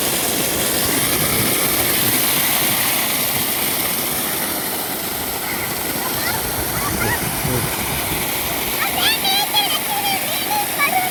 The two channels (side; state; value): both; identical; correlation 1.00